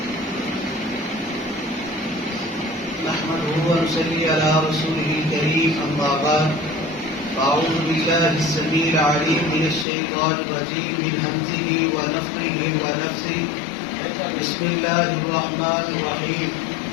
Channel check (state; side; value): drops out; right; at 9.9 s